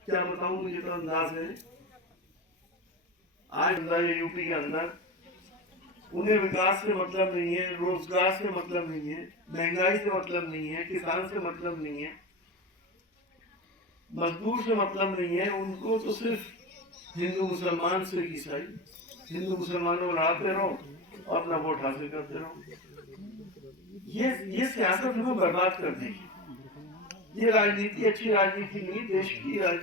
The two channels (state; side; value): normal; both; correlation 0.26